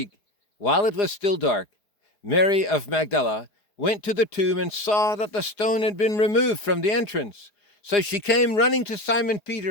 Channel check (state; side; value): late; right; 4.9 ms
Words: while it was still dark, Mary of Magdala went to the tomb and saw that the stone had been removed from the entrance. So she came running to Simon